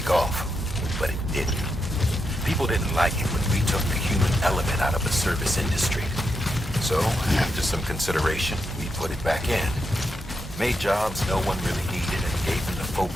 off. But it didn't. People didn't like it when we took the human element out of the service industry. So, after some consideration, we put it back in. Made jobs no one really needed and gave them to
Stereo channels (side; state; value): both; normal; correlation 0.84